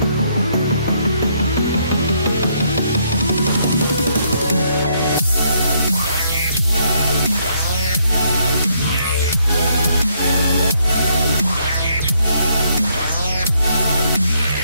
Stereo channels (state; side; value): inverted; both; correlation -0.71